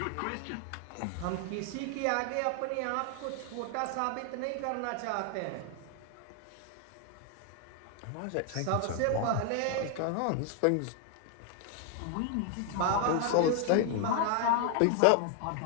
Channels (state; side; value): different; both; correlation 0.00